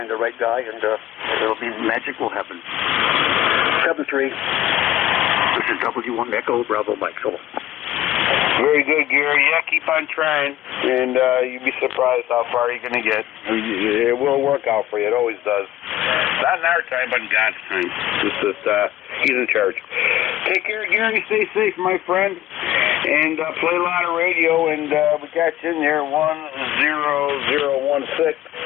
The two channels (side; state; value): right; quieter; 13.9 dB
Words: the right guy, and it'll be magic will happen. 7-3. This is W1 Echo Bravo Mike. So. Very good, Gary. Yeah, keep on trying, and you'd be surprised how far you're going to get. It will work out for you. It always does. Not in our time, but in God's time. It's just, he's in charge. Take care, Gary. Stay safe, my friend, and play a lot of radio, and we got you in there, 10016.